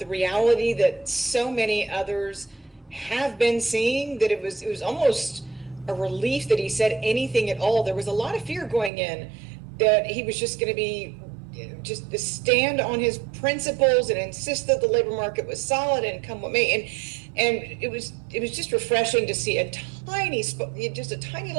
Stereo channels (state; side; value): drops out; left; at 8.9 s